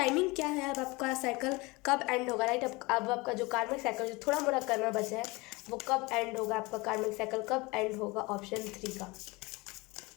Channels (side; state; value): right; quieter; 24.3 dB